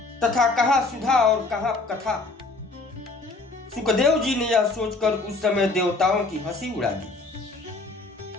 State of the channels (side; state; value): right; quieter; 3.4 dB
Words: तथा कहाँ सुधा और कहाँ कथा। सुखदेव जी ने यह सोचकर उस समय देवताओं की हंसी उड़ा दी।